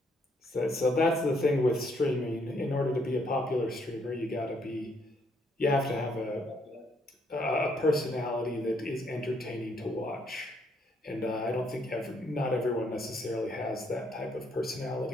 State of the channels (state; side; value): normal; both; correlation 0.71